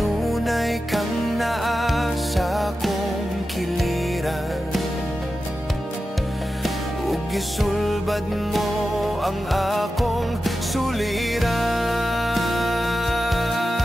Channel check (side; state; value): both; normal; correlation 0.92